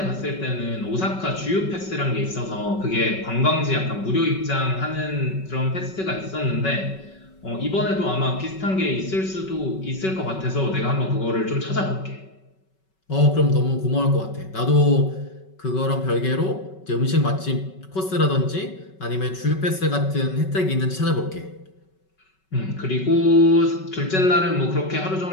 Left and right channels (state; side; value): late; right; 5.3 ms